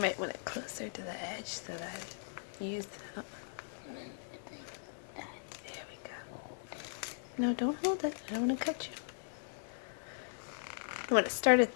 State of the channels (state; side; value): silent; right; 52 dB below the other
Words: might want it closer to the edge so that you use it up. There we go. No, don't hold it. I don't want to cut you. You want to start at